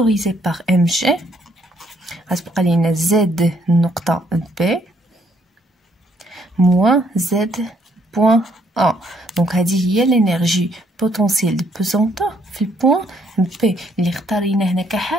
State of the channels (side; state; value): both; normal; correlation 0.69